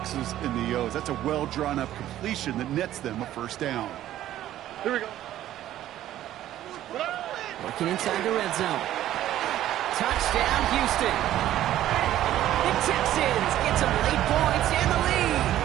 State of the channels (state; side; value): quieter; left; 13.0 dB